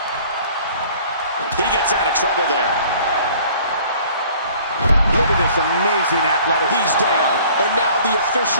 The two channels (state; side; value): inverted; both; correlation -0.52